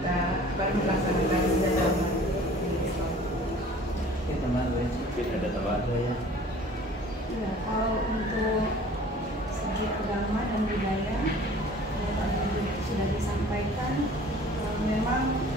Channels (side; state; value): both; normal; correlation 0.48